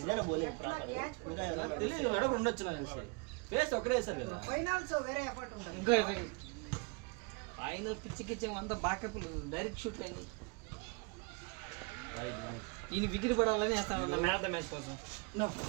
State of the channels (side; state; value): left; quieter; 30.5 dB